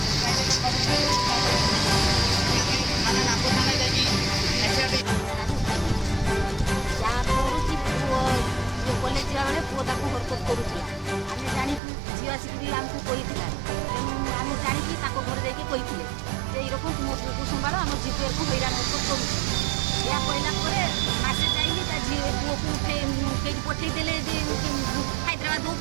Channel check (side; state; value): left; drops out; at 11.8 s